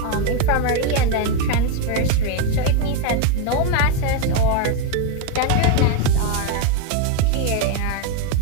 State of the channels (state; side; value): different; both; correlation 0.02